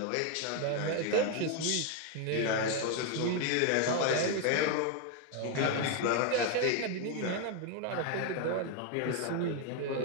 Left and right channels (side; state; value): both; different; correlation 0.01